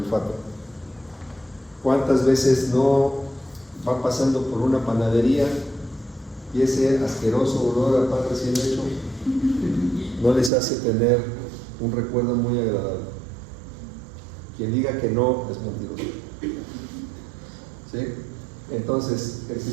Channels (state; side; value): drops out; left; at 10.5 s